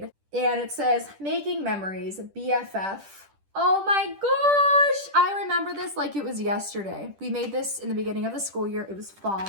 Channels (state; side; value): late; left; 10 ms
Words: and it says, "Making Memories, BFF." Oh my gosh, I remember this like it was yesterday. We made this in the beginning of the school year. It was